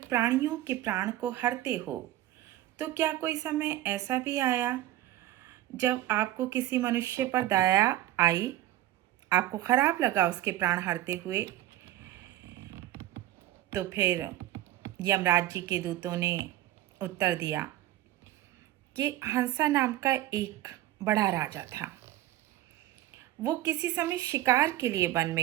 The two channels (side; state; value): left; quieter; 14.4 dB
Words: प्राणियों के प्राण को हरते हो, तो क्या कोई समय ऐसा भी आया जब आपको किसी मनुष्य पर दया आई, आपको खराब लगा उसके प्राण हरते हुए? तो फिर यमराज जी के दूतों ने उत्तर दिया कि हंसा नाम का एक बड़ा राजा था। वो किसी समय शिकार के लिए वन